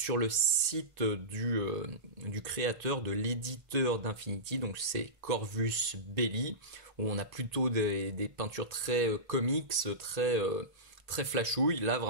le site du créateur, de l'éditeur d'Infinity, donc c'est Corvus Belli, où on a plutôt des peintures très comics, très flashouille. Là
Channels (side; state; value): left; late; 1.8 ms